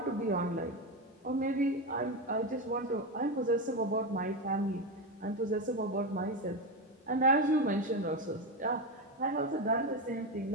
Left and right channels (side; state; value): both; normal; correlation 0.14